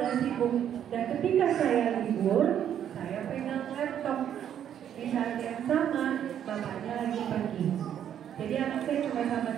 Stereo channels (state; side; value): quieter; left; 9.7 dB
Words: sibuk dan ketika saya libur, saya pegang laptop. Di saat yang sama, bapaknya lagi pergi. Jadi anak saya cuma sama